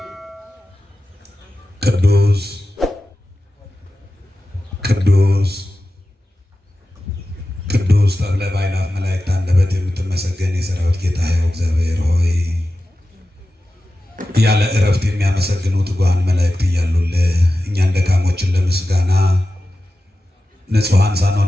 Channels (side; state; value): both; normal; correlation 0.94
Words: ቅዱስ ቅዱስ ቅዱስ ተብለ በአእላፍ መላእክት አንደበት የምትመሰገን የሠራዊት ጌታ ሕያው እግዚአብሔር ሆይ ያለ እረፍት የሚያመሰግኑ ትጉሃን መላእክት እያሉልህ እኛን ደካሞችን ለምስጋና ንጹሐን